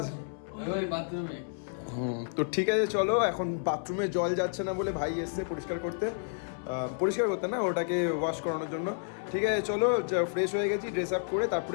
তো ঠিক আছে, চলো। এখন বাথরুমে জল যাচ্ছে না বলে ভাই এসছে পরিষ্কার করতে না, ওটাকে ওয়াশ করানোর জন্য। ঠিক আছে, চলো, ফ্রেশ হয়ে গেছি, ড্রেস আপ করে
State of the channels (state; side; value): silent; right; 57 dB below the other